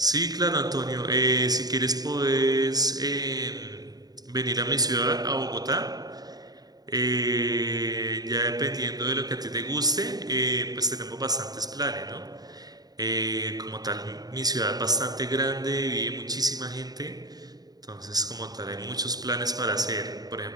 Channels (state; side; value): late; left; 0.19 ms